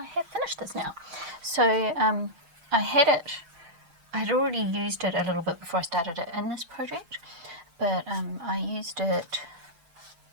have finished this now. So I had it, I'd already used it a little bit before I started it in this project, but I used it,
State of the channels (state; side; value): late; left; 6.6 ms